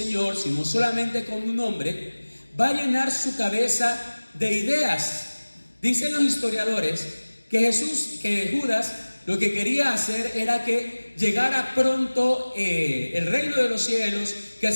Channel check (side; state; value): both; inverted; correlation -1.00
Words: sino solamente como un hombre, va a llenar su cabeza de ideas. Dicen los historiadores que Judas lo que quería hacer era que llegara pronto el reino de los cielos, que